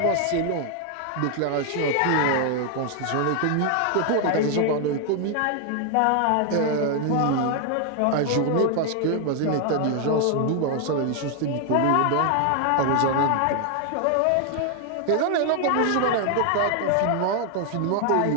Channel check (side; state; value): both; different; correlation 0.00